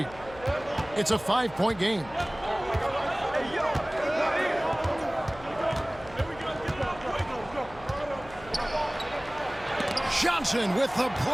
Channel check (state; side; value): noise; left; hum, 18 dB below the sound